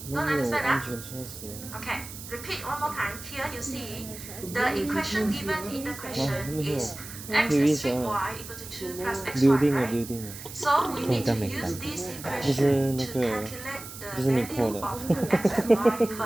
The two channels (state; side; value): noise; right; hiss, 13 dB below the sound